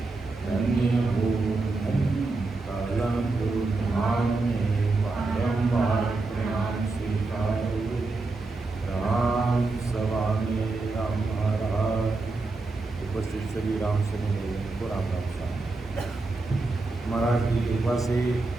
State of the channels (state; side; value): quieter; left; 3.5 dB